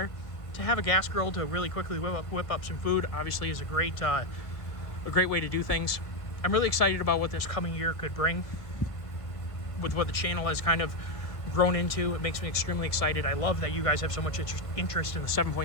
To have a gas grill to really quickly whip up some food obviously is a great way to do things. I'm really excited about what this coming year could bring with what the channel has kind of grown into. It makes me extremely excited. I love that you guys have so much interest in the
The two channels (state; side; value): late; right; 1.5 ms